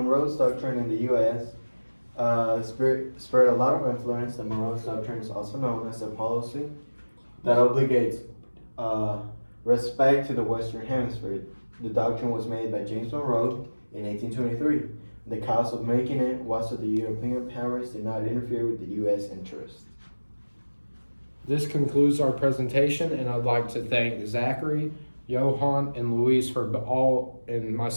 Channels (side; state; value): both; inverted; correlation -1.00